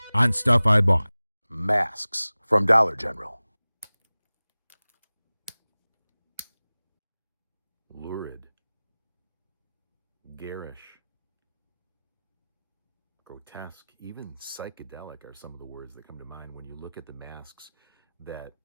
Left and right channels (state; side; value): inverted; both; correlation -0.98